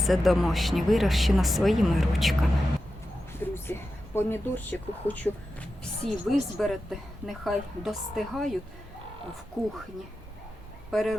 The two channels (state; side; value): normal; both; correlation 0.91